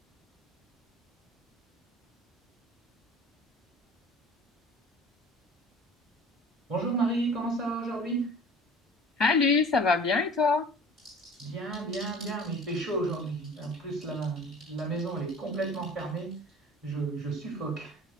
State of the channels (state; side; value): normal; both; correlation 0.44